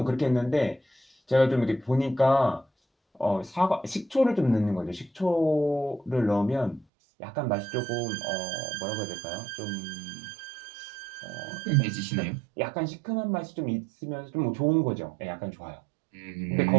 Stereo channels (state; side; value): drops out; left; at 6.9 s